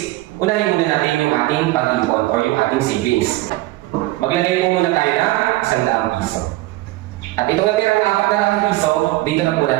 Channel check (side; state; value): left; quieter; 18.4 dB